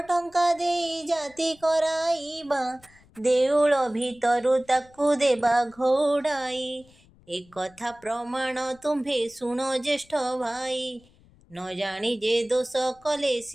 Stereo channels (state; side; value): noise; left; rumble, 28 dB below the sound